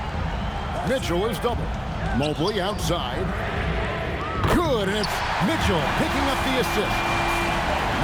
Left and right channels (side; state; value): both; identical; correlation 1.00